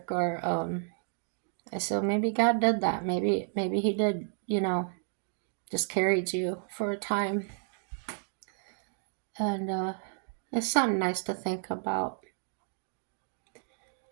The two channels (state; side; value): silent; left; 57 dB below the other